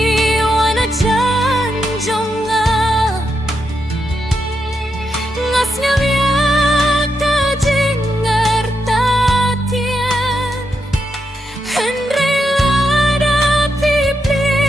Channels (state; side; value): normal; both; correlation 0.83